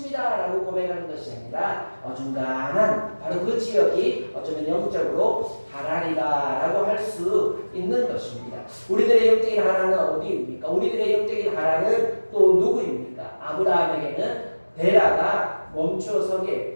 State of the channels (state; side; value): inverted; both; correlation -1.00